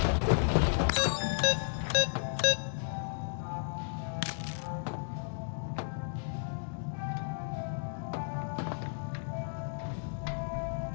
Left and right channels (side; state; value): right; silent; digital silence